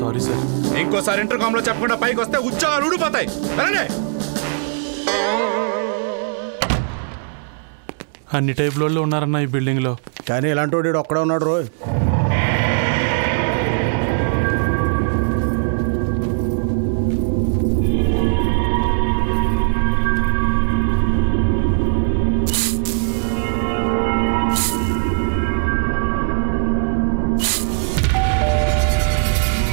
sir. ఇంకోసారి ఇంటర్కామ్ లో చెప్పకుండా పైకి వస్తే ఉద్యోగాలు ఊడిపోతాయి. వెళ్ళండి. అన్ని టైప్ లో ఉన్నారన్న ఈ బిల్డింగ్ లో. కానీ ఇలాంటి వాడు ఒక్కడే ఉన్నాడు రోయ్.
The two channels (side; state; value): left; silent; digital silence